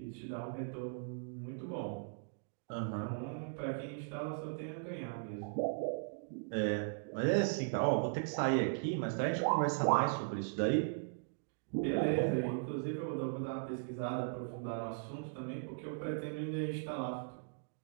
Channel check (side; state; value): left; silent; digital silence